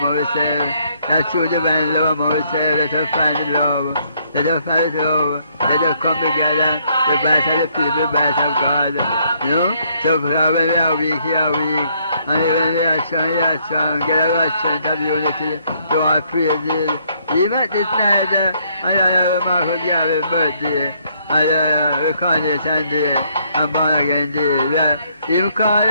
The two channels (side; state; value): both; inverted; correlation -0.69